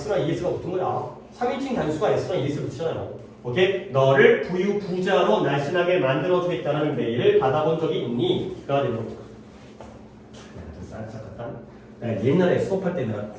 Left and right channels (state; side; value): identical; both; correlation 1.00